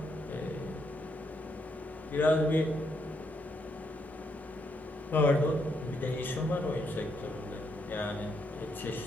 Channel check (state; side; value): normal; both; correlation 0.77